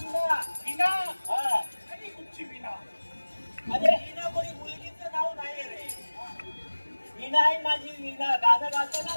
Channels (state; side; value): inverted; both; correlation -1.00